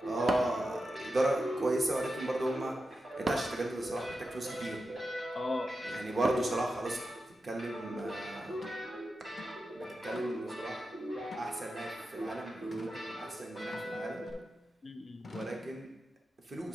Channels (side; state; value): both; normal; correlation 0.90